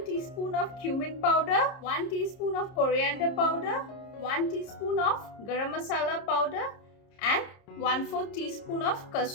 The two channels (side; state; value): right; late; 30 ms